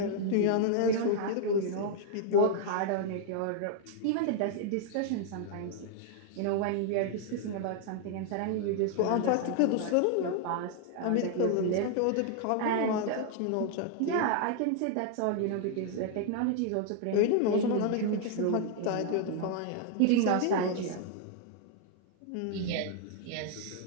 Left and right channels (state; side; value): different; both; correlation 0.00